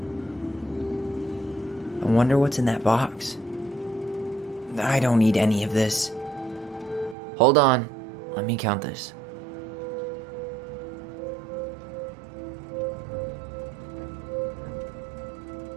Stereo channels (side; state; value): left; drops out; at 7.2 s